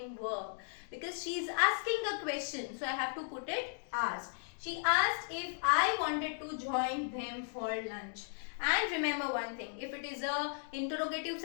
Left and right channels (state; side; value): silent; right; digital silence